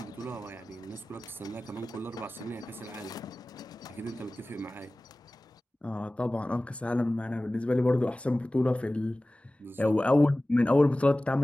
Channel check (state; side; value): normal; both; correlation 0.97